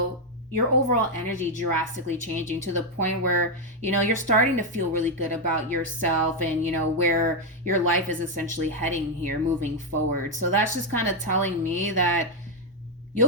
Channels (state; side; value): normal; both; correlation 0.03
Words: your overall energy drastically changing to the point where, you're starting to feel really good about yourself and, where your life is essentially heading here moving forward. So that's just kind of telling me that